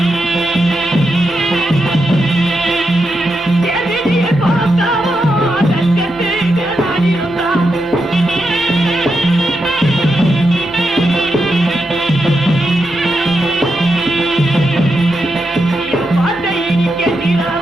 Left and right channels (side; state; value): both; normal; correlation 0.85